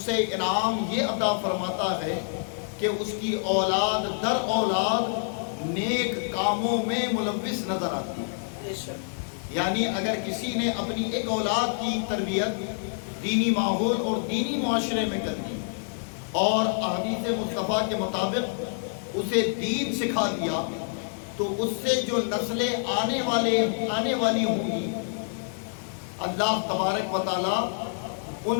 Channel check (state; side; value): silent; right; digital silence